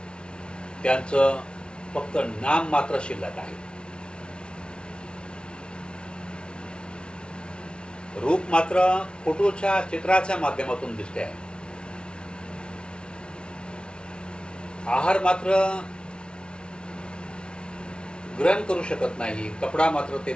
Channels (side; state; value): right; late; 0.057 ms